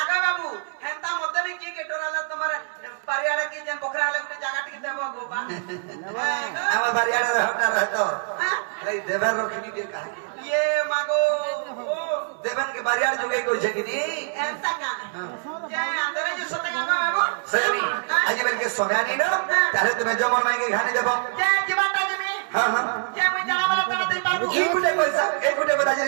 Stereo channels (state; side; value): silent; left; 62 dB below the other